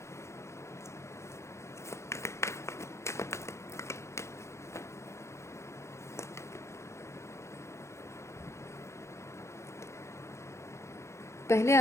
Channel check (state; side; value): late; right; 0.14 ms